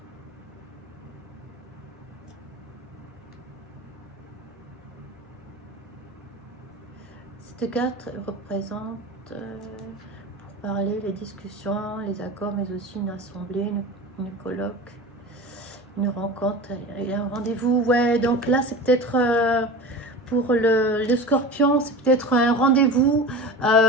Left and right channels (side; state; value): both; normal; correlation 0.32